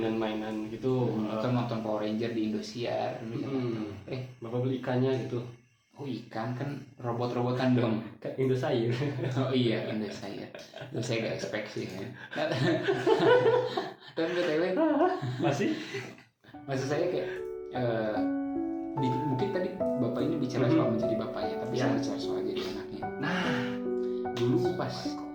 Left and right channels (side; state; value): both; identical; correlation 1.00